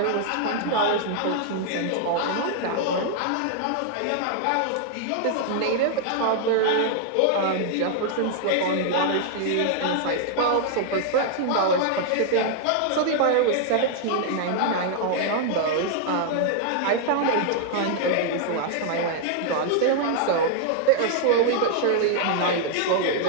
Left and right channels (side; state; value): both; different; correlation 0.00